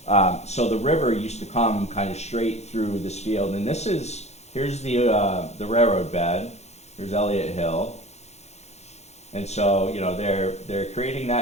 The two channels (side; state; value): right; late; 0.32 ms